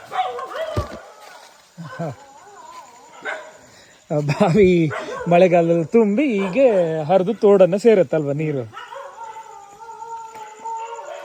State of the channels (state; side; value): identical; both; correlation 1.00